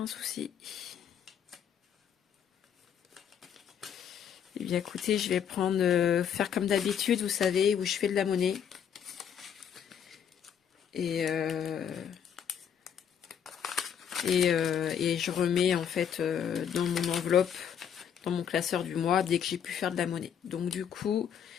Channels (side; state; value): right; quieter; 8.3 dB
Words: Eh bien écoutez, je vais faire comme d'habitude, vous savez, où je fais de la monnaie. Et je remets en fait dans mon enveloppe, dans mon classeur du mois, dès que j'ai pu faire de la monnaie. Donc du coup,